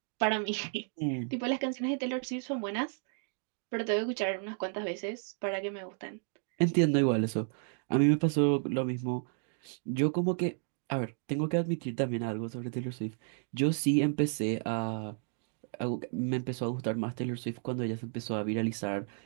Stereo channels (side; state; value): left; silent; 56 dB below the other